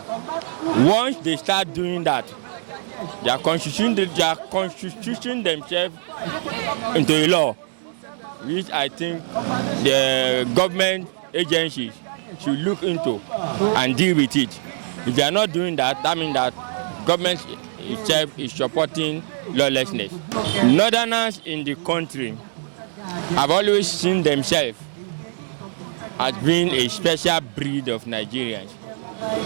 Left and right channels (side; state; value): left; silent; digital silence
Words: Once they start doing that, they are constituting themselves into a law. which I think the government agencies should look into and deal with it. If they are not doing that, that means that government itself is supporting lawlessness. Northerners in the country have always seen themselves as being a special breed of Nigerians,